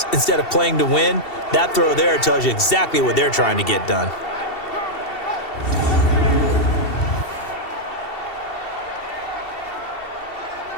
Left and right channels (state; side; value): late; right; 2.7 ms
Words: instead of playing to win. That throw there tells you exactly what they're trying to get done.